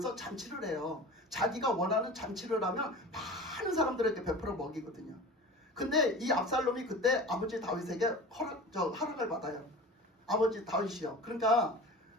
잔치를 해요. 자기가 원하는 잔치를 하면 많은 사람들에게 베풀어 먹이거든요. 근데 이 압살롬이 그때 아버지 다윗에게 허락을 받아요. 아버지 다윗이요. 그러니까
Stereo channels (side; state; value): both; normal; correlation 0.36